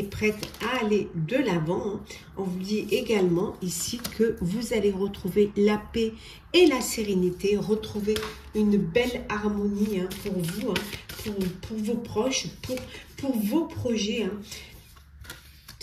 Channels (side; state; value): both; identical; correlation 1.00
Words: prête à aller de l'avant, hein. On vous dit également ici que vous allez retrouver la paix et la sérénité, retrouver une belle harmonie, hein, pour vous, hein, pour vos proches, pour vos projets, hein.